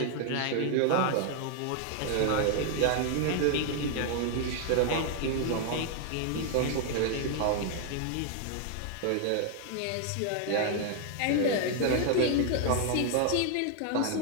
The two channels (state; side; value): different; both; correlation 0.00